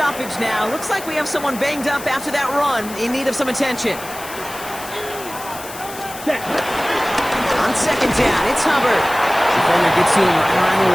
now. Looks like we have someone banged up after that run in need of some attention. Set. On 2nd down, it's Hubbard. Defender gets to him right around the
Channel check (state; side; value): noise; left; hiss, 14 dB below the sound